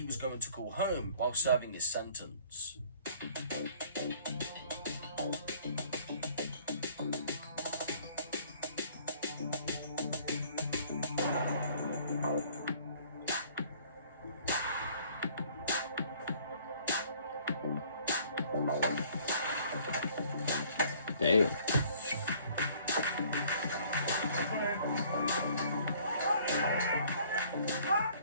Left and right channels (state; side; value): inverted; both; correlation -0.56